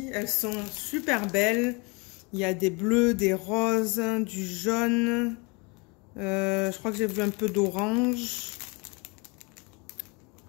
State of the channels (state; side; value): quieter; right; 29.5 dB